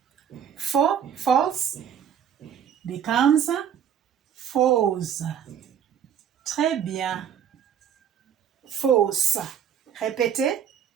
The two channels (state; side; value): quieter; left; 8.6 dB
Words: false, becomes fausse. Très bien. Fausse. Répétez.